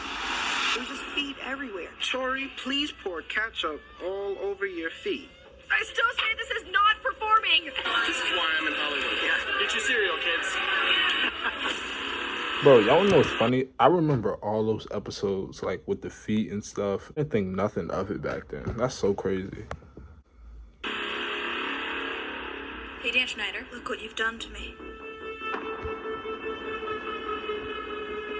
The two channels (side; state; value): both; identical; correlation 1.00